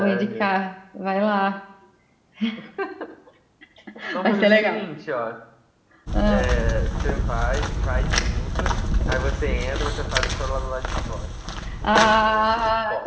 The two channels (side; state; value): both; identical; correlation 1.00